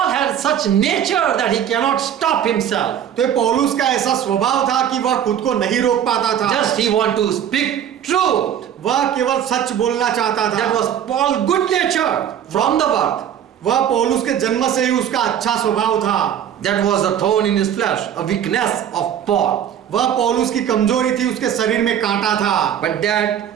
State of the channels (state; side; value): quieter; left; 9.6 dB